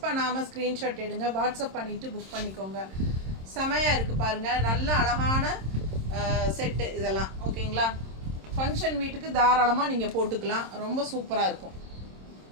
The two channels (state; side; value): late; left; 26 ms